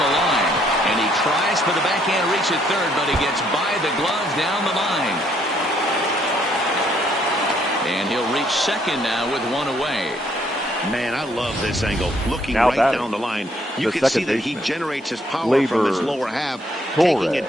line, and he tries for the backhand reach at third, but he gets by the glove down the line. And he'll reach second now with one away. Man, I love this angle. Looking Now right down the line, you can see that he generates his power from his lower half, taking it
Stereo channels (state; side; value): normal; both; correlation 0.68